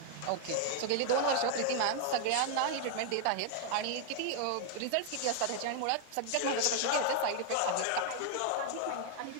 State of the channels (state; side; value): different; both; correlation 0.00